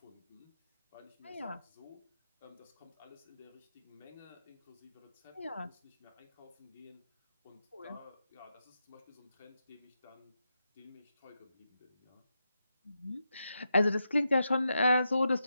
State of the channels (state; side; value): inverted; both; correlation -0.86